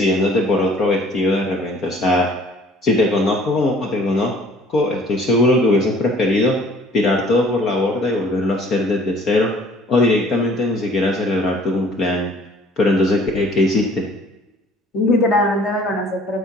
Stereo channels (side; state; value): both; normal; correlation 0.54